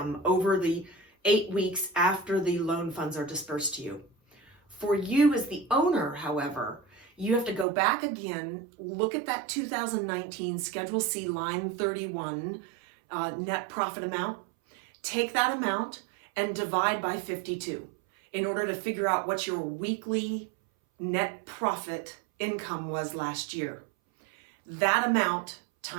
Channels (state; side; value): drops out; left; at 7.7 s